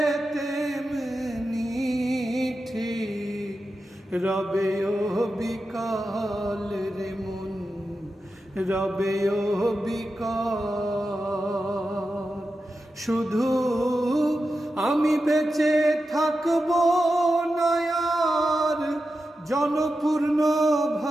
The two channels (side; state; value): both; normal; correlation 0.90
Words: তেমনি ঠিক রবে ও বিকাল রে মন, রবে ও বিকাল। শুধু আমি বেঁচে থাকবো না আর জনপূর্ণ